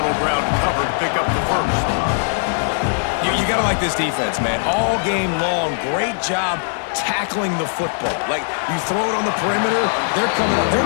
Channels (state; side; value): silent; right; digital silence